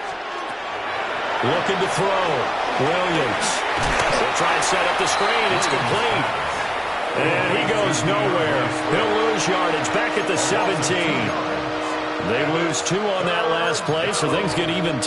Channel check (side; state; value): both; identical; correlation 1.00